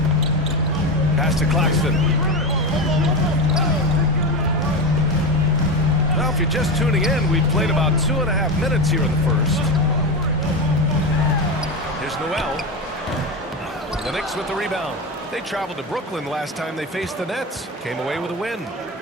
Pass to Claxton. Now, if you're just tuning in, we've played about 2.5 minutes here in the first. Here's Noel. The Knicks with the rebound. They traveled to Brooklyn last time they faced the Nets. Came away with a win.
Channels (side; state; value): both; normal; correlation 0.18